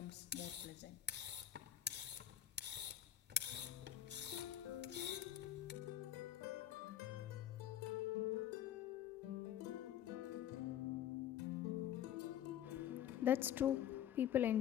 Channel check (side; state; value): right; quieter; 11.1 dB